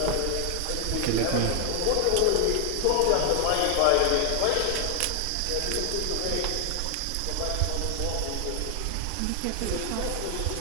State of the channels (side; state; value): both; different; correlation 0.00